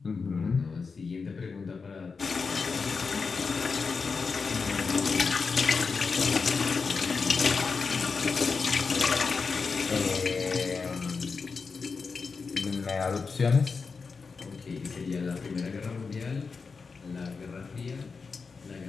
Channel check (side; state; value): right; quieter; 4.9 dB